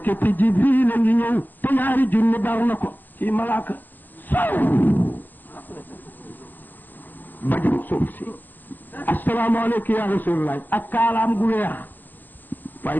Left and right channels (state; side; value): late; right; 0.087 ms